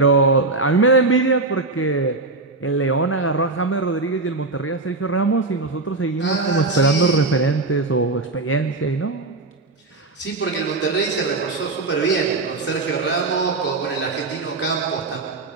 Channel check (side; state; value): left; quieter; 3.4 dB